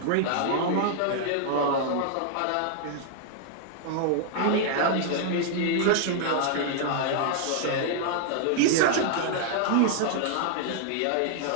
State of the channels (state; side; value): different; both; correlation -0.01